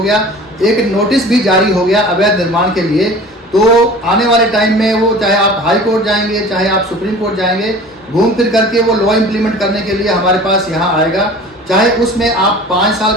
गया, एक नोटिस भी जारी हो गया अवैध निर्माण के लिए, तो आने वाले टाइम में वो, चाहे आप हाई कोर्ट जाएंगे, चाहे आप सुप्रीम कोर्ट जाएंगे, घूम फिर करके वो लॉ इम्प्लीमेंट करने के लिए हमारे पास यहाँ आएगा। चाहे उसमें आप 5 साल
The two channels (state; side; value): normal; both; correlation 0.42